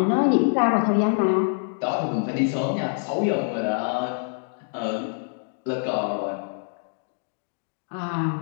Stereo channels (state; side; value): silent; right; 61 dB below the other